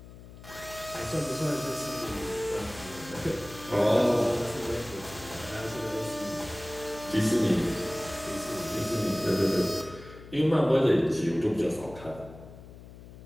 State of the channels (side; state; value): left; noise; hum, 17 dB below the sound